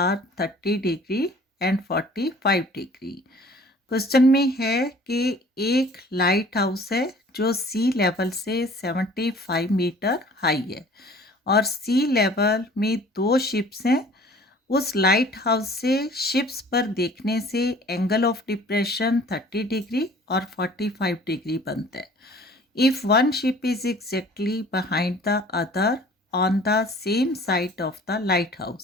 30 degree and 45 degree. Question में है कि एक लाइट हाउस है जो सी लेवल से 75 मीटर हाई है और सी लेवल में दो शिप्स हैं। उस लाइट हाउस से शिप्स पर देखने से एंगल ऑफ डिप्रेशन 30 डिग्री और 45 डिग्री बनता है। If one ship is exactly behind the other on the same side of the light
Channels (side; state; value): both; normal; correlation 0.50